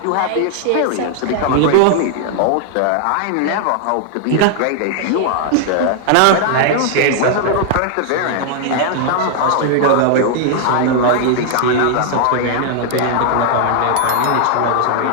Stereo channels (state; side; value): different; both; correlation -0.01